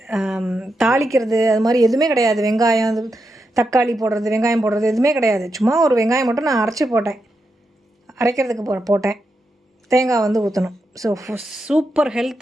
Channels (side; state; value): both; normal; correlation 0.86